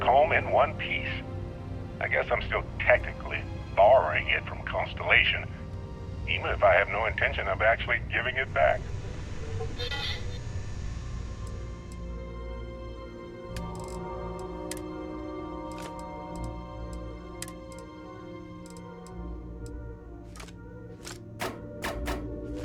home in one piece. I guess I'm still technically borrowing it from Constellation, even if I have no intention of actually giving it back.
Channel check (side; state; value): both; identical; correlation 1.00